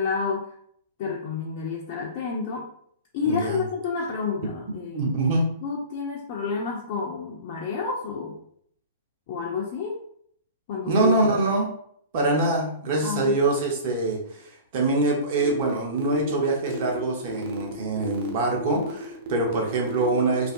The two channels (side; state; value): both; inverted; correlation -0.35